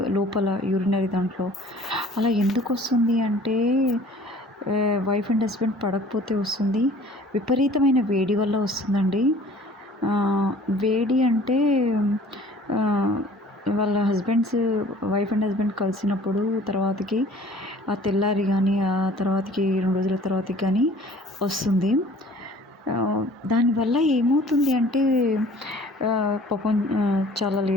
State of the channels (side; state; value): both; normal; correlation 0.50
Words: లోపల యూరినరీ దాంట్లో. అలా ఎందుకొస్తుంది అంటే వైఫ్ అండ్ హస్బెండ్ పడకపోతే వస్తుంది. విపరీతమైన వేడి వల్ల వస్తుందండి. వేడి అంటే ఆహ్, వాళ్ళ వైఫ్ అండ్ హస్బెండ్ కలిసినప్పుడు తర్వాతకి ఆ తెల్లారి గానీ, ఆ తర్వాతకి 2 రోజుల తర్వాతకి గానీ వస్తుంది. దానివల్ల ఏమవుతుంది అంటే పాపం చాలా